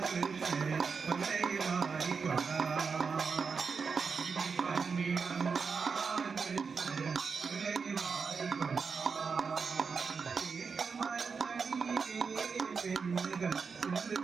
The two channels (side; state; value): left; quieter; 5.4 dB